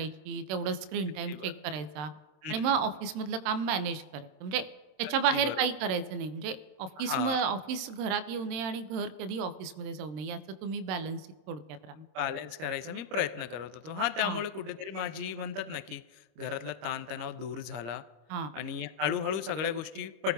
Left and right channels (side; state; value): left; late; 27 ms